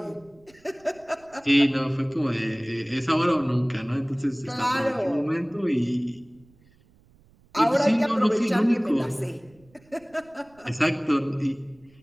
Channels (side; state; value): right; noise; rumble, 30 dB below the sound